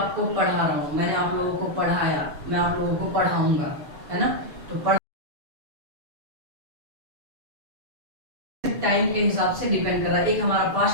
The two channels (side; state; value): left; late; 7.0 ms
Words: पढ़ा रहा हूँ, मैंने आप लोगों को पढ़ाया, मैं आप लोगों को पढ़ाऊंगा, है ना। तो टाइम के हिसाब से डिपेंड कर रहा है। एक हमारा